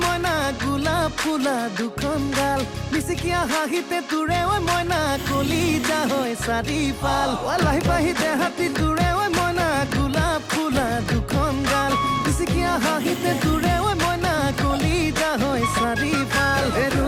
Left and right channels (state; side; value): identical; both; correlation 1.00